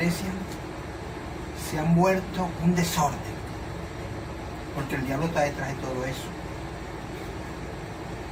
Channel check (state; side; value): identical; both; correlation 1.00